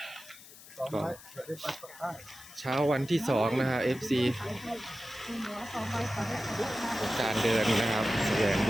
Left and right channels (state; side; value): noise; left; hiss, 19 dB below the sound